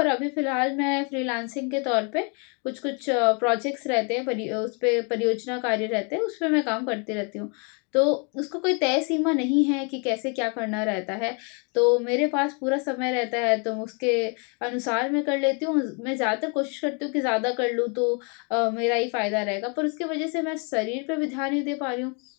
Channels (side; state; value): right; quieter; 36.0 dB